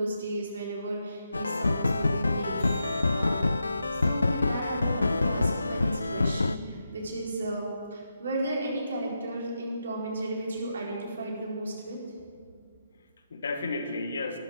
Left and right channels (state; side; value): inverted; both; correlation -0.85